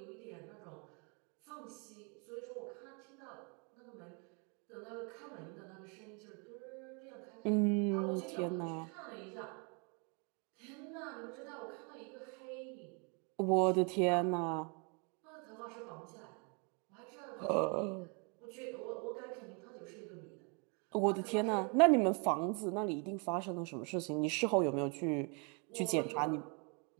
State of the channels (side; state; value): left; quieter; 34.9 dB